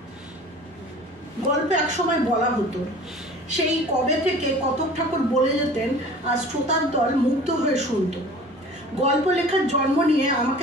গল্পে একসময় বলা হতো, সেই কবে থেকে কতক ঠাকুর বলে যেতেন, আর শ্রোতার দল মুগ্ধ হয়ে শুনত। গল্প লেখার জন্ম নিয়ে আমাকে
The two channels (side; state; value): both; normal; correlation 0.43